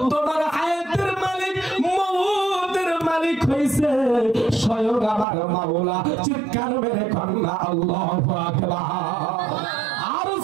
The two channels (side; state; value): left; drops out; at 5.2 s